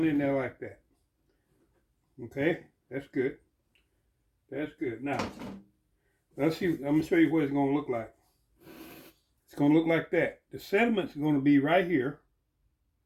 in there like that. Okay, that's good. That's good. Now, let's see. I'm gonna show you what it's gonna look like. It's gonna look like that. The sediment's gonna be right here,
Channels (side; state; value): both; identical; correlation 1.00